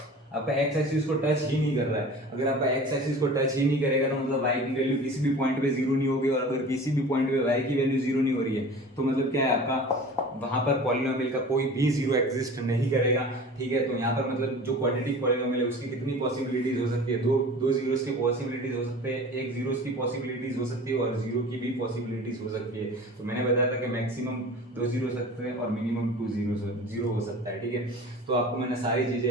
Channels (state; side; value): normal; both; correlation 0.39